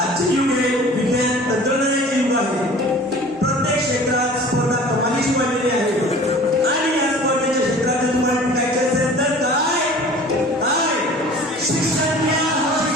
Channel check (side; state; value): both; normal; correlation 0.44